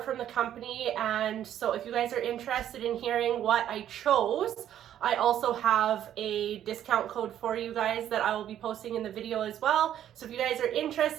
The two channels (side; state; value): left; quieter; 10.9 dB